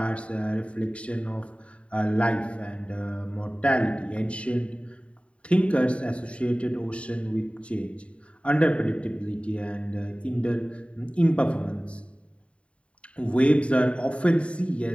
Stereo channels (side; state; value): right; late; 0.061 ms